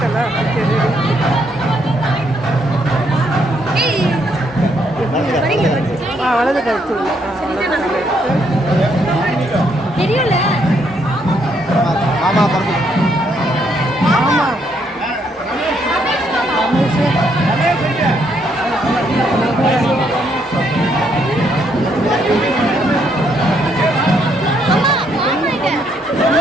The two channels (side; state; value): both; normal; correlation 0.73